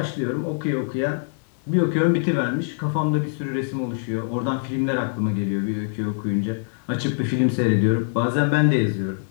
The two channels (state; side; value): silent; right; 63 dB below the other